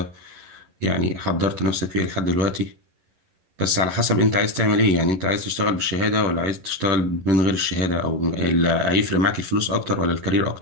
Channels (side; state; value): left; late; 11 ms